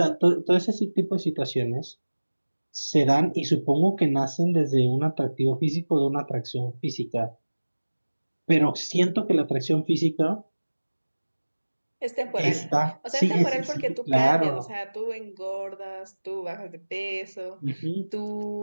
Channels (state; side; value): inverted; both; correlation -1.00